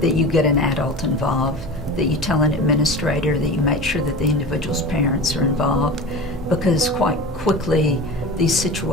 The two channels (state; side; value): normal; both; correlation 0.32